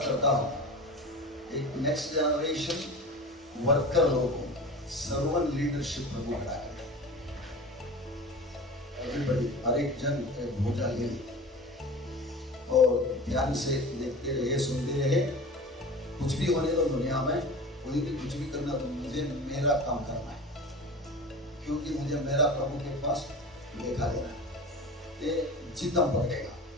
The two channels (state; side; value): normal; both; correlation 0.34